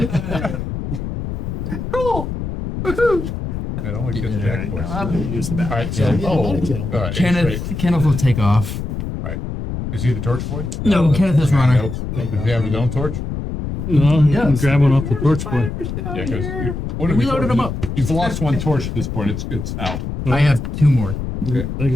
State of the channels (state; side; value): noise; left; rumble, 5 dB below the sound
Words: Cool. Woohoo. It only gets Yeah. jack points. I'm gonna use the All back. right, so Yeah, all I'll get him. right, great. Kenneth will take off. Is he the torch boy? No, Kenneth is runner. Nope. Does he have his own torch? Well, you can Yes. grab one off the torch boy. Yeah, because We loaded him up. You've lost one torch at this point. It's out. I have 2 more. Like